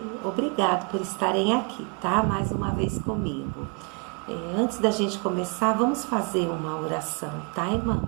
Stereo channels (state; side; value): quieter; left; 34.4 dB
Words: obrigado por estarem aqui, tá? Mais uma vez comigo. Antes da gente começar, vamos fazer uma oração, tá,